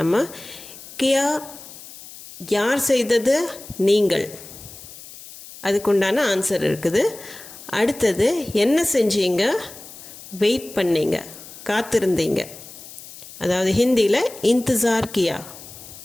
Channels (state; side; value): noise; left; hiss, 16 dB below the sound